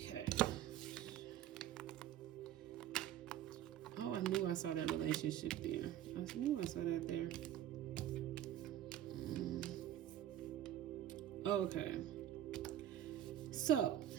Oh, I knew I saw that relationship there. I knew I saw that there. Okay. So,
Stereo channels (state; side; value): quieter; left; 12.0 dB